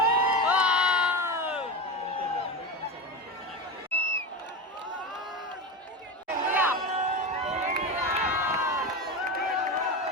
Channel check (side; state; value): both; normal; correlation 0.21